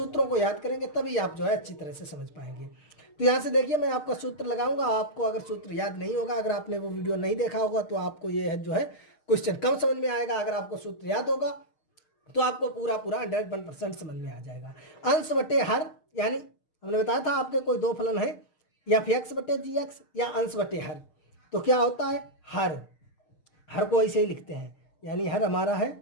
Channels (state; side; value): late; right; 6.5 ms